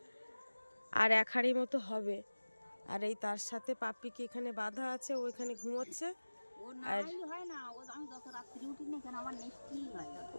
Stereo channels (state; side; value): inverted; both; correlation -1.00